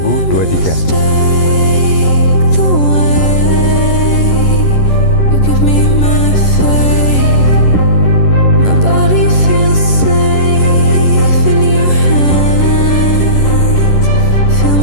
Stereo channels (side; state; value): right; late; 11 ms